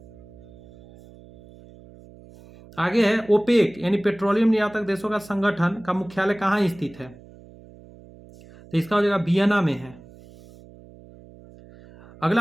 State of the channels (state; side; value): noise; right; hum, 22 dB below the sound